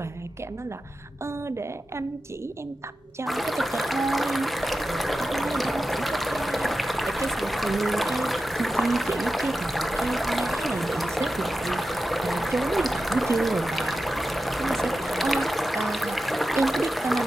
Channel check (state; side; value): normal; both; correlation 0.92